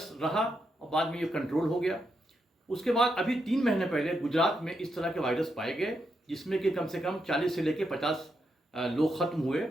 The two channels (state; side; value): normal; both; correlation 0.83